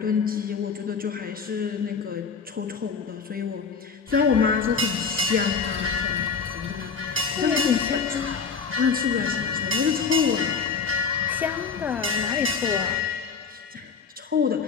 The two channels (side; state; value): right; quieter; 5.6 dB